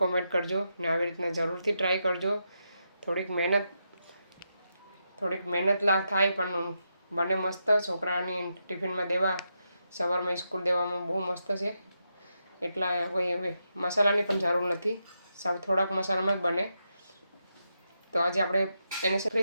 કોમેન્ટ કરજો ને આવી રીતના જરૂરથી ટ્રાય કરજો. થોડીક મહેનત થાય પણ બને મસ્ત. છોકરાની ટિફિનમાં દેવા, સવારમાં સ્કૂલ દેવામાં બહુ મસ્ત છે. એટલા કોઈ મસાલાની પણ જરૂર નથી, સાવ થોડાક મસાલામાં જ બને. તો આજે આપણે એને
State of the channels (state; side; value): inverted; both; correlation -0.84